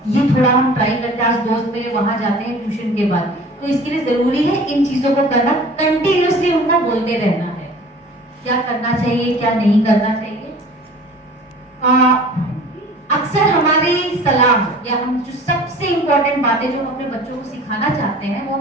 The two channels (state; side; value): normal; both; correlation 0.44